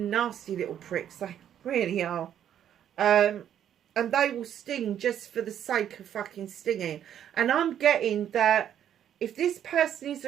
little pricks. They really are. And they will sting just for the sake of fucking stinging. And I'm getting that if this person is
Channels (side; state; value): left; quieter; 10.0 dB